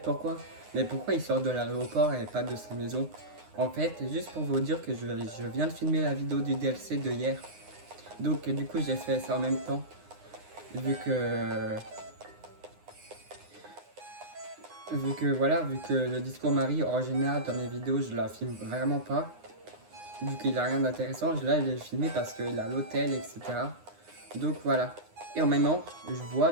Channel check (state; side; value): late; left; 9.7 ms